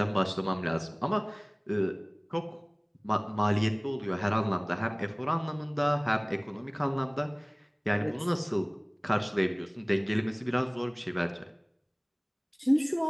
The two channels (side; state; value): both; identical; correlation 1.00